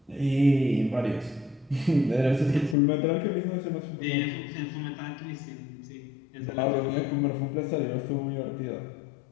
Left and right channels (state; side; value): drops out; right; at 2.8 s